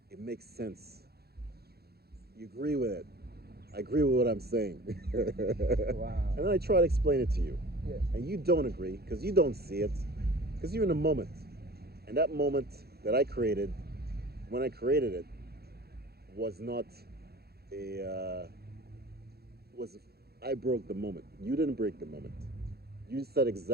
It makes sense. You agree with it. I agree with what I'm saying. Wow. And then I try to explain it to you. Yeah. And you don't agree because you don't see it because you're in the moment. And that moment that I created, when I created it, was not a was I broke the moment. You didn't break the moment. You said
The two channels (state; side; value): late; left; 0.46 ms